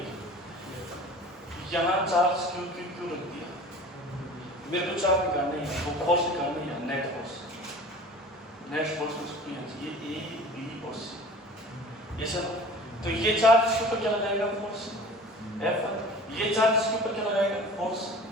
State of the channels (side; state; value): both; normal; correlation 0.42